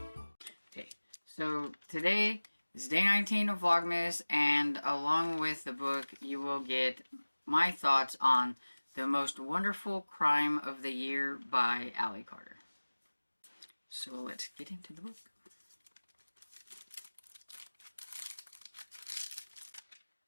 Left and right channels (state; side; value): inverted; both; correlation -1.00